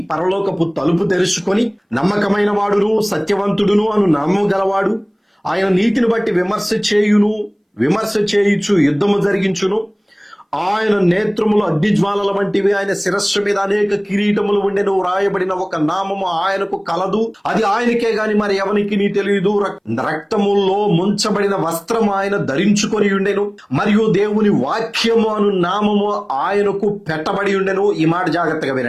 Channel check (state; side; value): identical; both; correlation 1.00